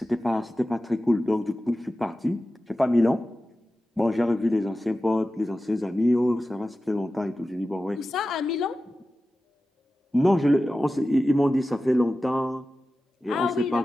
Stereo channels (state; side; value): normal; both; correlation 0.94